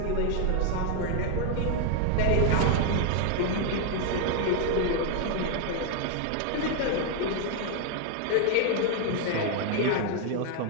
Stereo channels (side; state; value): both; different; correlation 0.00